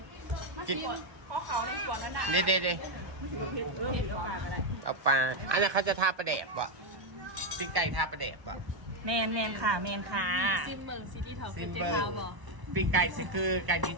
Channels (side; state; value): left; late; 1.1 ms